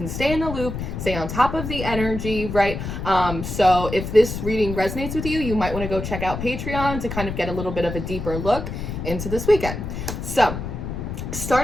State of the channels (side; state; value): left; noise; rumble, 6 dB below the sound